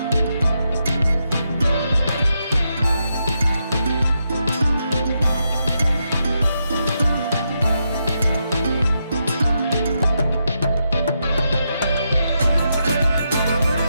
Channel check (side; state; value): both; inverted; correlation -0.83